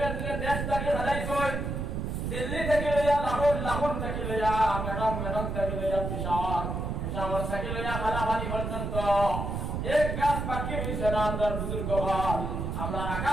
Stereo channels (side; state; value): right; noise; rumble, 3 dB below the sound